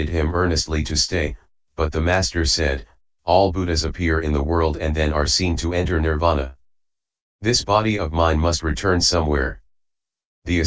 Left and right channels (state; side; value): identical; both; correlation 1.00